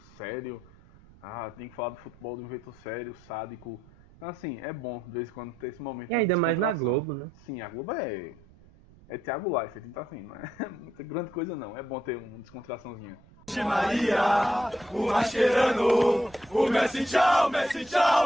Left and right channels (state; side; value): noise; right; rumble, 25 dB below the sound